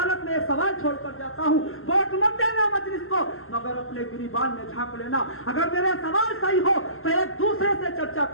में एक सवाल छोड़कर जाता हूँ, वोट मत देना मजलिस को, मगर अपने गिरिबान में झांक लेना। अगर मेरे सवाल सही हो तो एक दूसरे से चर्चा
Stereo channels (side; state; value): right; late; 0.61 ms